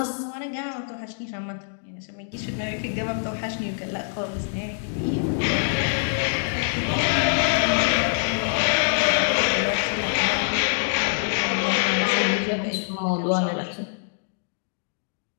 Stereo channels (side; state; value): right; silent; digital silence